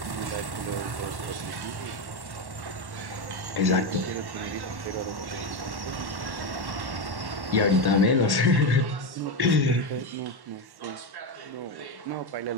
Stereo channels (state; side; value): late; left; 1.1 ms